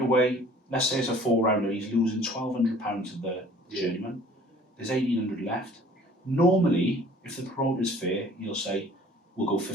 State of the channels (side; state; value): both; normal; correlation 0.51